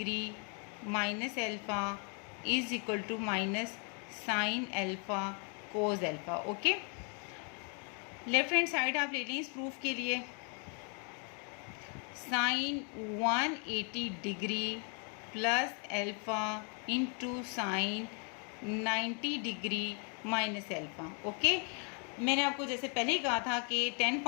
minus alpha is equal to minus sine alpha cos alpha. Okay, left hand side आप ले लें इस प्रूफ के लिए। Sine 180 degree plus alpha into sine 90 degree minus alpha. Okay, मैंने आपको जैसे पहले ही कहा था कि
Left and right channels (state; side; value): quieter; right; 38.8 dB